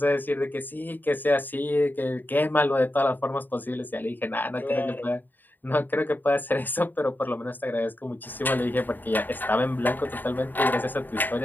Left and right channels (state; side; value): late; right; 0.090 ms